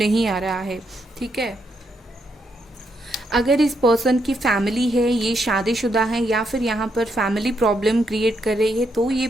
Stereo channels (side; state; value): both; normal; correlation 0.78